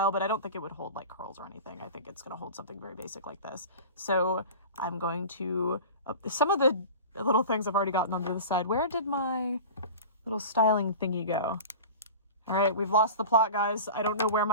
but I don't think it would hold like curls or anything. I think it's going to hold something very basic like this. So I'm going to, some of the little things I've already gotten onto the side. Where did my little styling thingy go? All right, we've lost the plot, guys. I don't know where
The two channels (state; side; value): inverted; both; correlation -0.34